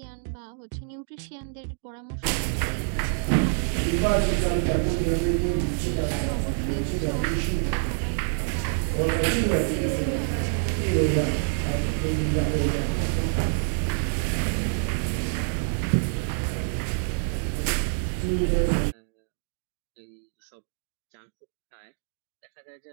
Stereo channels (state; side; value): silent; left; digital silence